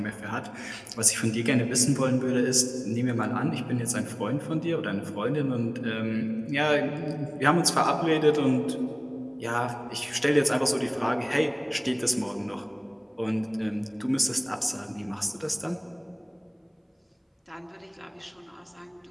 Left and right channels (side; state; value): both; identical; correlation 1.00